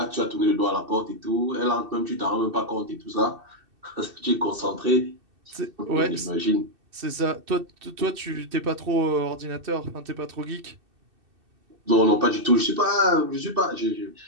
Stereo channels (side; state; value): left; late; 2.6 ms